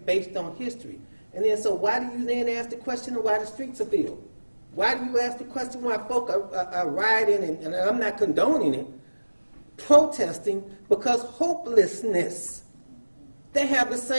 based on history. And then, so why do you then ask the question of why the streets are filled? Why do you ask the question why folk are rioting, and I'm not condoning it, protesting because hopelessness? They have the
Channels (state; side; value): inverted; both; correlation -1.00